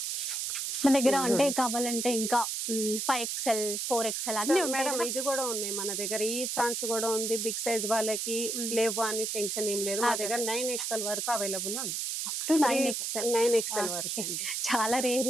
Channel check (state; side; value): noise; right; hiss, 2 dB below the sound